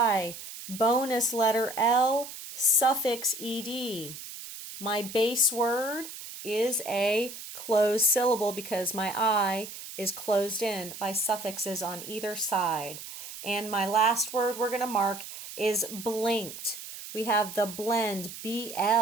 bonus letter L, suffix ed. My base word is a closed syllable because my I is closed in by suffixes on either side. And my last word we're going to mark is blinked. We have the blend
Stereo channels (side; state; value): right; noise; hiss, 12 dB below the sound